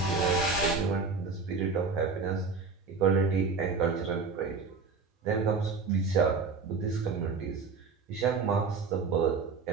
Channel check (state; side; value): quieter; left; 4.8 dB